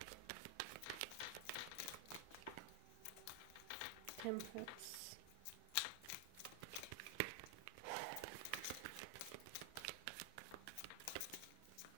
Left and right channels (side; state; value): both; different; correlation 0.00